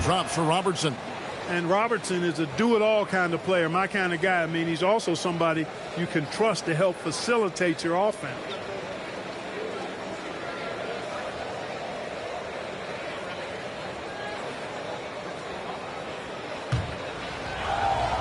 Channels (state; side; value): identical; both; correlation 1.00